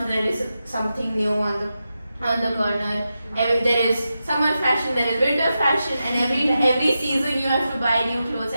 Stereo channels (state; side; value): inverted; both; correlation -0.89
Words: there is something new on the corner. There is summer fashion, there is winter fashion, and every season you have to buy new clothes.